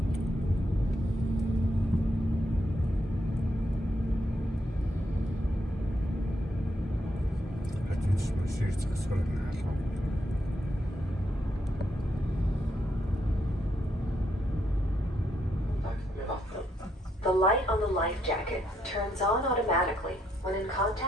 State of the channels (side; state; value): both; normal; correlation 0.78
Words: The light on the life jacket turns on automatically when in